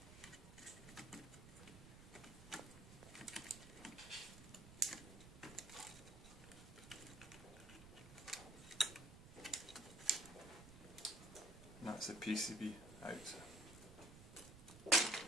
And that's the PCB out.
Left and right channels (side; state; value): right; noise; rumble, 15 dB below the sound